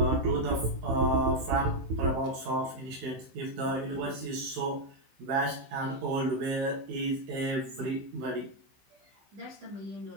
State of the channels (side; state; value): left; late; 15 ms